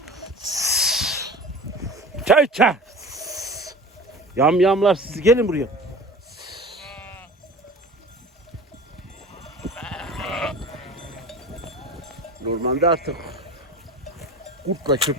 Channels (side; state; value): both; normal; correlation 0.37